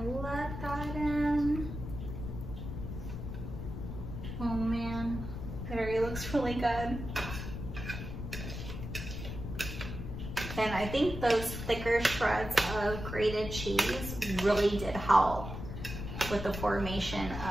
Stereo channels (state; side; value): noise; left; rumble, 7 dB below the sound